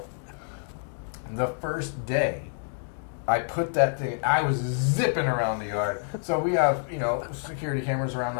the first day, I put that thing. I was zipping around the yard. So we have security cameras around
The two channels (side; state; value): right; silent; digital silence